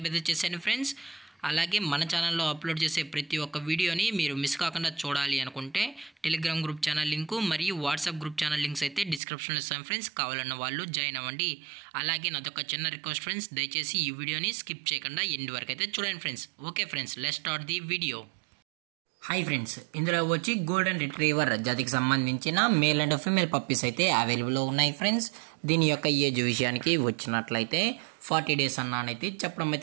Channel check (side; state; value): left; drops out; at 9.2 s